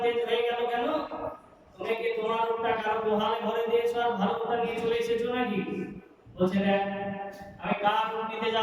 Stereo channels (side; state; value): both; identical; correlation 1.00